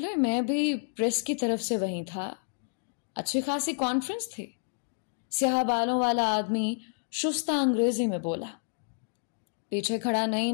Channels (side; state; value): right; silent; digital silence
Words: میں بھی پریس کی طرف سے وہیں تھا۔ اچھی خاصی کانفرنس تھی۔ سیاہ بالوں والا آدمی شستہ انگریزی میں بولا۔ پیچھے کھڑا